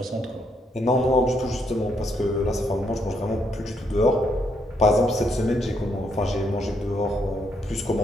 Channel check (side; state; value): both; normal; correlation 0.75